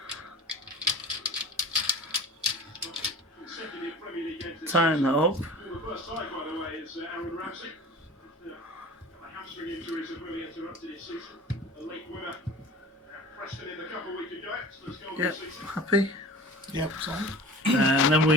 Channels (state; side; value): normal; both; correlation 0.39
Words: Tighten that up. Yep, happy? Yep, and then